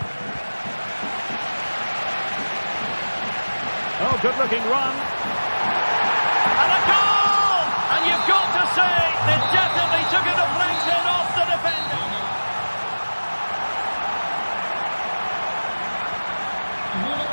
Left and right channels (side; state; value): both; inverted; correlation -1.00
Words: Oh, good-looking run. And a goal! And you've got to say, they definitely took a deflection off the defender.